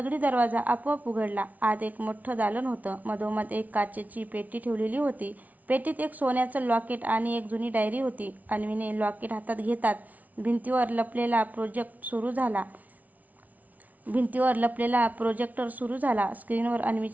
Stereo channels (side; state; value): left; late; 0.074 ms